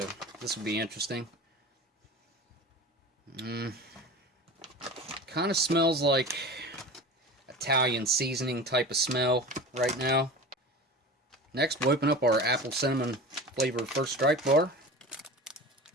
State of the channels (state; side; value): normal; both; correlation 0.34